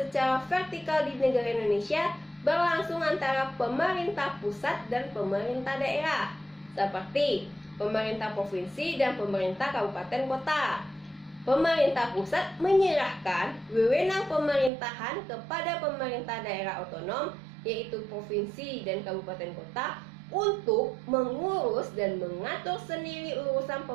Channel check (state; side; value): drops out; left; at 14.7 s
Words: vertikal di negara Indonesia berlangsung antara pemerintah pusat dan pemerintah daerah, seperti pemerintah provinsi dan pemerintah kabupaten kota. Pemerintah pusat menyerahkan wewenang pemerintahan kepada pemerintah daerah otonom, yaitu provinsi dan kabupaten kota, untuk mengurus dan mengatur sendiri urusan